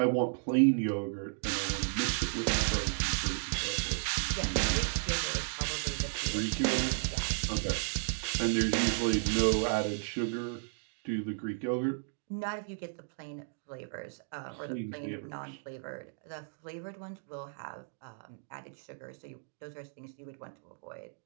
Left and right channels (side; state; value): left; silent; digital silence